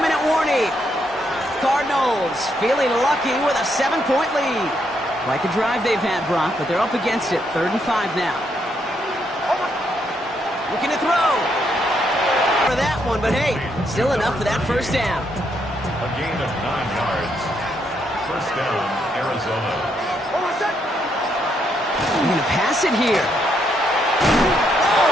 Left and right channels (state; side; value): normal; both; correlation 0.76